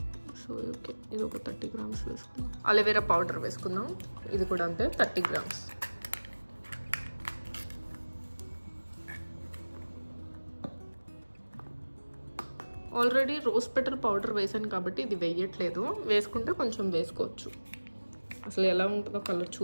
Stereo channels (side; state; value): both; inverted; correlation -1.00